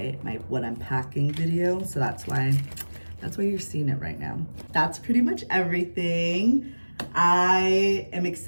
what I'm packing video. So that's why you're seeing it right now. That's pretty much everything. I am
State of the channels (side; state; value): both; inverted; correlation -1.00